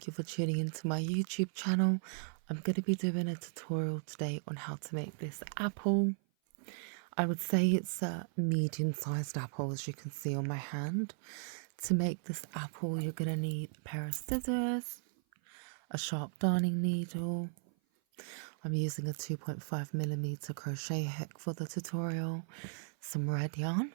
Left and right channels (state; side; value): silent; left; 54 dB below the other